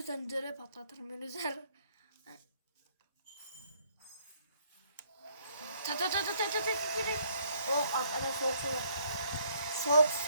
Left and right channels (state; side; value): inverted; both; correlation -0.66